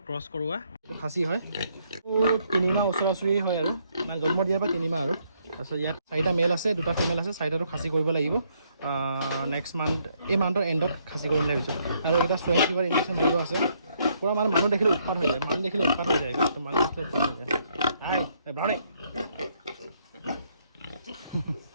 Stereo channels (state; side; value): inverted; both; correlation -0.72